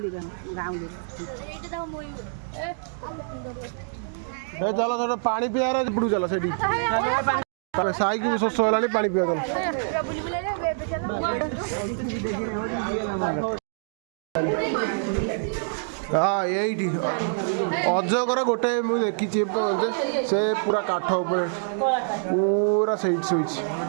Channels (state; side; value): silent; left; digital silence